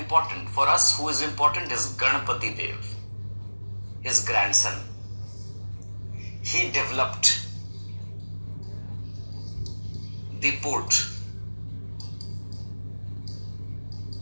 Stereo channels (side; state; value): both; inverted; correlation -1.00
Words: For us, who is important is Ganpati Dev, his grandson. He developed the port